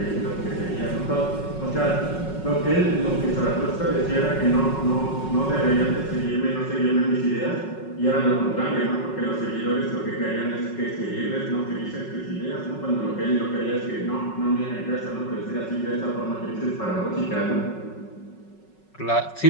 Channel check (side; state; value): right; late; 5.4 ms